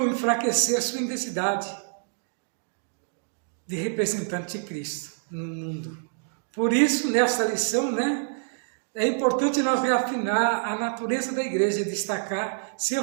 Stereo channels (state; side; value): silent; left; digital silence